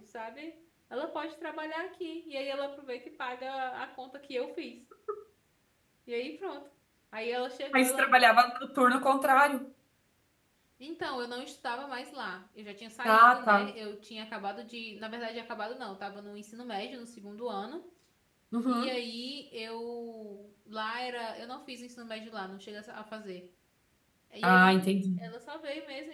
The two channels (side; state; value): both; identical; correlation 1.00